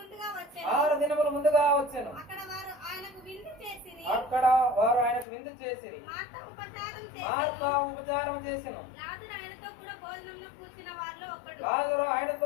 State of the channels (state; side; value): drops out; right; at 5.2 s